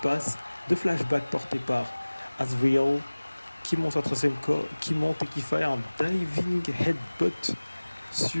de flashback porté par Azrael qui monte qui monte et qui fait un diving headbutt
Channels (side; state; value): both; inverted; correlation -1.00